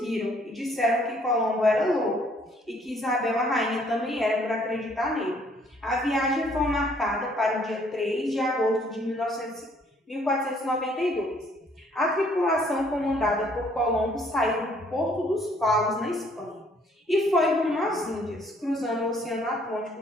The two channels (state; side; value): normal; both; correlation 0.63